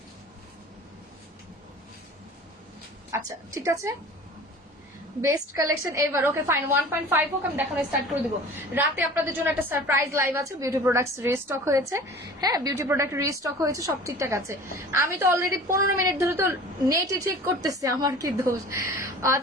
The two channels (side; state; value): both; normal; correlation 0.42